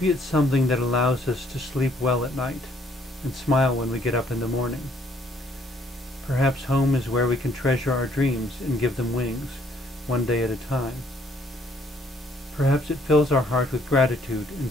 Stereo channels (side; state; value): both; normal; correlation 0.64